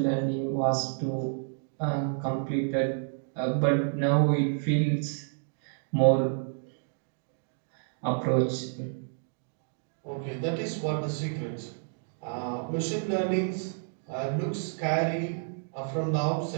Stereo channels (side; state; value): left; silent; digital silence